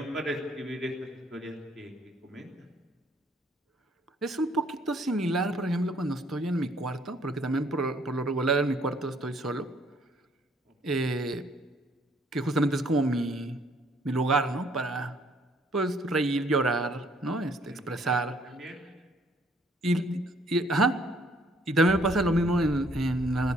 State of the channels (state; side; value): normal; both; correlation 0.64